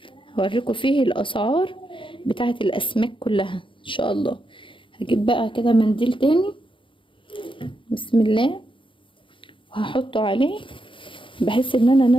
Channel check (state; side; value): late; right; 0.25 ms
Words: هوريكم فيه الاسعار بتاعه الاسماك كلها ان شاء الله. هجيب بقى كده منديل تاني، بسم الله، وهحطه عليه بحيث ان انا